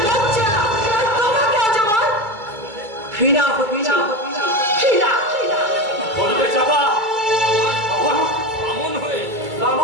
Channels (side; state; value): left; late; 2.3 ms